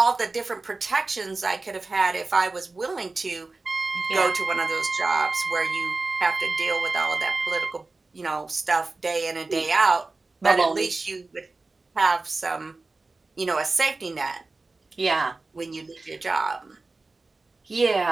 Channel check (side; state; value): left; quieter; 3.5 dB